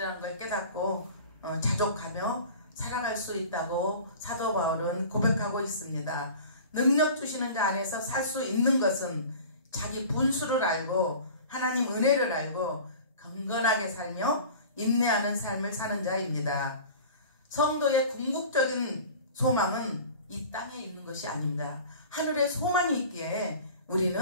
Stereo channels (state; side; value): inverted; both; correlation -0.41